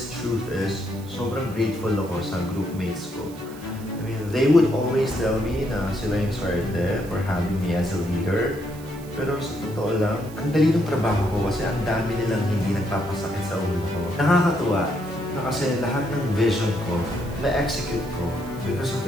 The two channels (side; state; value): right; noise; hiss, 21 dB below the sound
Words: truth is, sobrang grateful ako sa groupmates ko. I mean, they would always tell me na sila yung swerte for having me as a leader. Pero sa totoo lang, ang dali ng trabaho ko kasi ang dami nilang hindi nagpapasakit sa ulo ko. Nakakatuwa na kasi lahat ng vision ko, na-execute ko because of